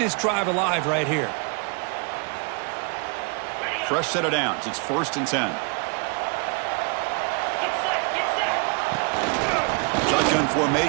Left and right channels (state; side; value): quieter; left; 35.1 dB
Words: drive alive right here. Fresh set of downs. It's 1st and 10. Shotgun